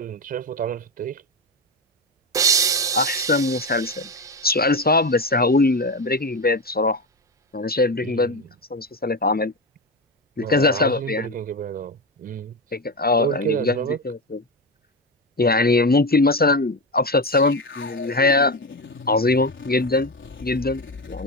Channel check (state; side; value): normal; both; correlation 0.17